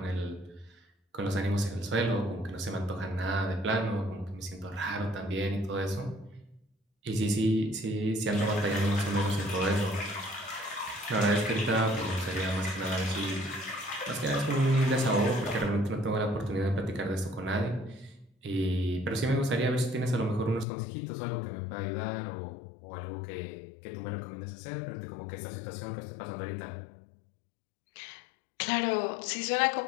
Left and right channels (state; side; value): drops out; right; at 20.7 s